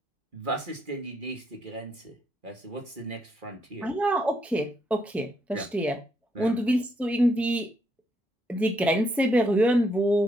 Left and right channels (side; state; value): both; normal; correlation 0.76